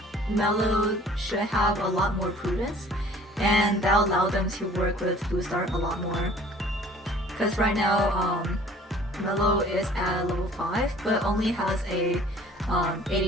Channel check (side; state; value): both; normal; correlation 0.51